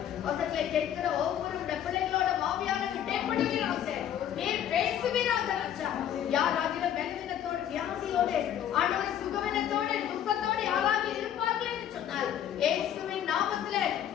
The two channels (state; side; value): quieter; right; 10.3 dB